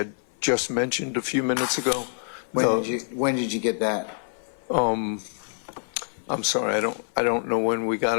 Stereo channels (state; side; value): silent; right; 57 dB below the other